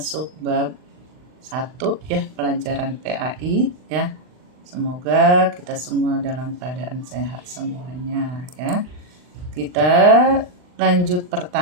bab 1 ya, pelajaran PAI ya. Semoga kita semua dalam keadaan sehat semuanya ya. Kita lanjut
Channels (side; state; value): left; late; 39 ms